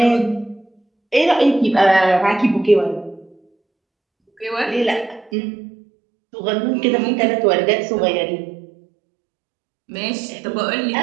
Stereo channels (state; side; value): drops out; left; at 5.3 s